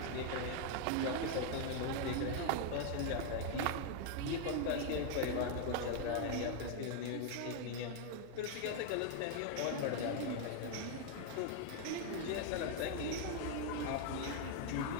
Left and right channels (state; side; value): different; both; correlation 0.00